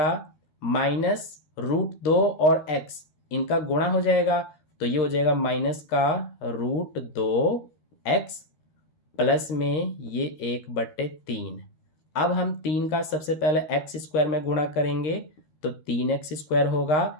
माइनस √2 और x इनका गुणा हो जाएगा, तो ये हो जाएगा -√2x। x प्लस में ये 1/3। अब हम 3 का सबसे पहले एक्स स्क्वायर में गुणा करेंगे तो 3x स्क्वायर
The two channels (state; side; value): late; right; 13 ms